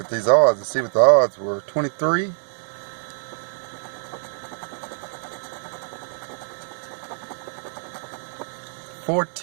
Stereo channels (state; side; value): silent; left; digital silence